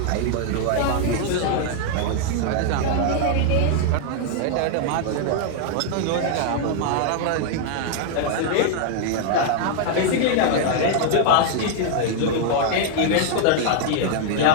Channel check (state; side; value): different; both; correlation 0.00